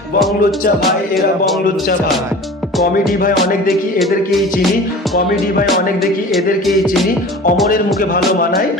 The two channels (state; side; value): normal; both; correlation 0.39